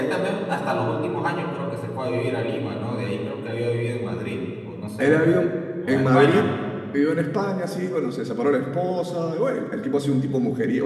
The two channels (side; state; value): both; identical; correlation 1.00